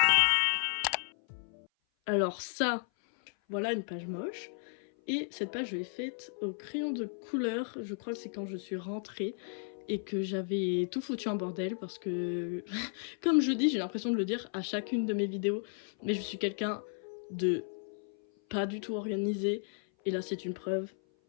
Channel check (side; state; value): right; silent; 55 dB below the other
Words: Alors ça, voilà une page moche. Et cette page, je l'ai faite au crayon de couleur. Je crois que c'est quand je suis rentrée et que j'avais tout foutu en bordel parce que, comme je dis, j'ai l'impression de le dire à chacune de mes vidéos, mais je suis quelqu'un de pas du tout organisé. Et là, c'est une preuve